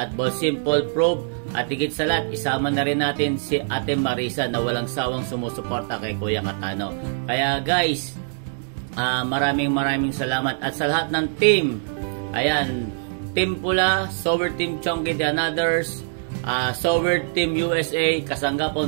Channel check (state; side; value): silent; left; digital silence